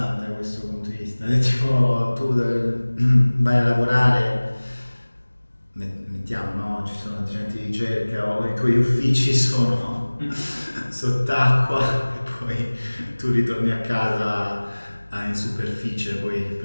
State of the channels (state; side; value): inverted; both; correlation -1.00